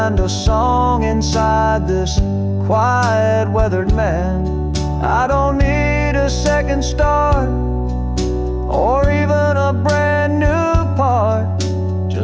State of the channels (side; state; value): both; identical; correlation 1.00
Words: a song inside this quiet, weathered man. I don't need a second start or even a brand new part,